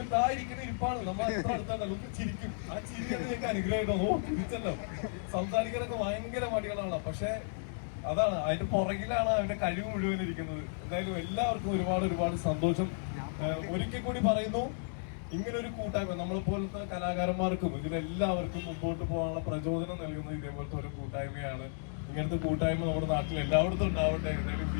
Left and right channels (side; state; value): right; silent; digital silence